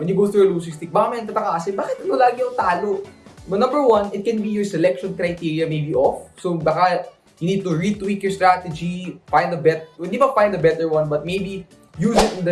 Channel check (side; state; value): both; identical; correlation 1.00